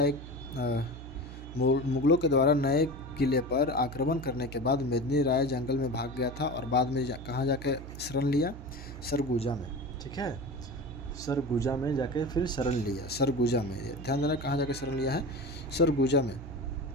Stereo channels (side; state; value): right; noise; hum, 12 dB below the sound